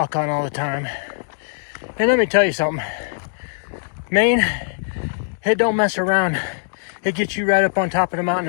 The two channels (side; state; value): right; silent; digital silence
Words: on all the time. And let me tell you something, Maine, it don't mess around. It gets you right up on top of the mountain